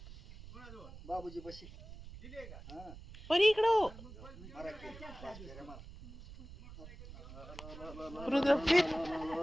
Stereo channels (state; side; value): noise; right; rumble, 15 dB below the sound